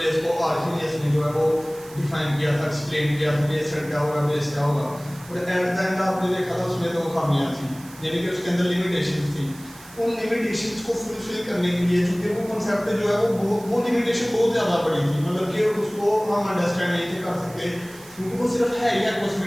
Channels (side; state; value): right; noise; hiss, 20 dB below the sound